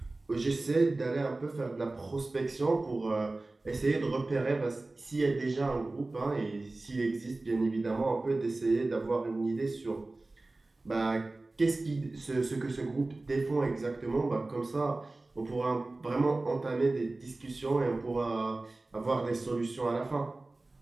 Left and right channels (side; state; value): left; quieter; 3.1 dB